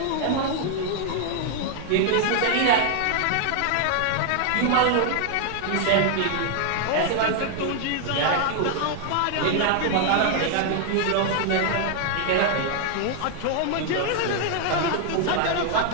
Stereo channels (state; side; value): different; both; correlation 0.00